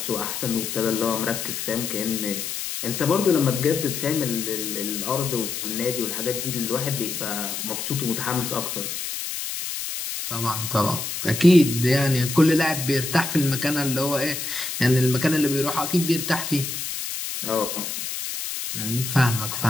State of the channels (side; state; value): left; noise; hiss, 5 dB below the sound